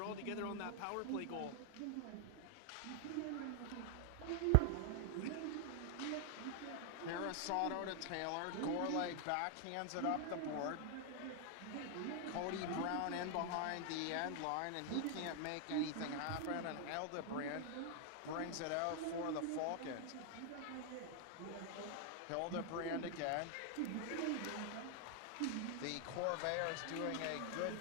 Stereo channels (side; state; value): both; different; correlation 0.00